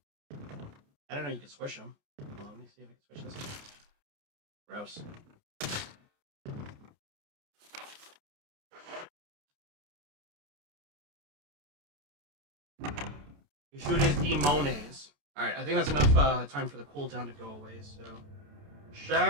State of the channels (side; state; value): left; late; 29 ms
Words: I don't know, you can squish them. Well, let me see if I can squish this. Gross. You shoot his demones. Alright, I think that's enough time for the cooldown to go away, so...